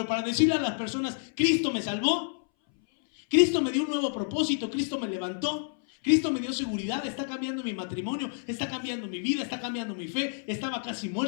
para decirle a las personas, Cristo me salvó, Cristo me dio un nuevo propósito, Cristo me levantó, Cristo me dio seguridad, está cambiando mi matrimonio, está cambiando mi vida, está cambiando mi fe, estaba casi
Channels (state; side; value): silent; right; 59 dB below the other